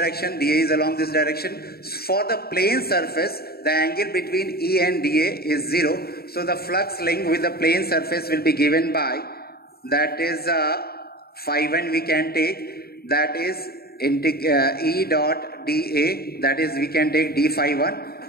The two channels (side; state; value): right; late; 0.45 ms